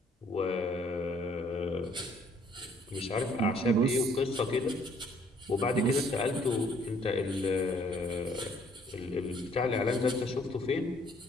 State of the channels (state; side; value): normal; both; correlation 0.63